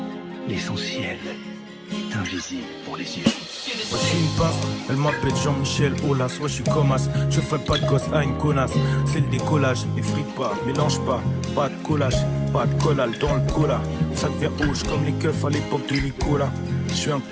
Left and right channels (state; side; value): identical; both; correlation 1.00